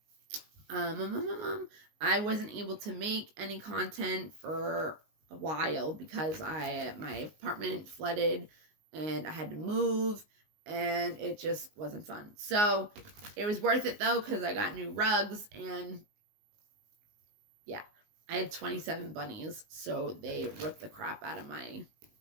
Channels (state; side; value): late; left; 19 ms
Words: wasn't able to make any content for a while because my apartment flooded and I had to move and it just wasn't fun. So it was worth it though, because I got new rugs and yeah, I had 27 bunnies, so they ripped the crap out of my